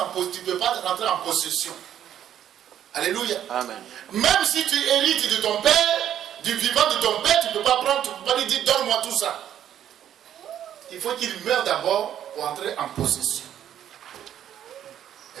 en possession. Alléluia. Amen. Même si tu hérites de ton père, du vivant de ton père, tu ne peux pas prendre, tu ne peux pas lui dire donne-moi tout ça. Il faut qu'il meure d'abord pour entrer en possession.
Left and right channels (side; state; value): left; quieter; 10.4 dB